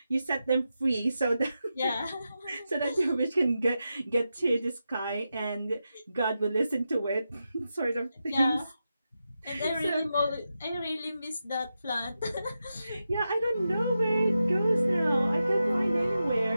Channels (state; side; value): inverted; both; correlation -0.89